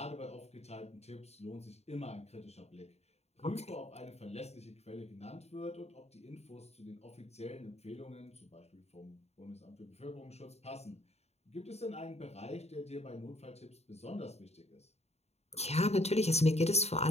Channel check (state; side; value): late; right; 0.31 ms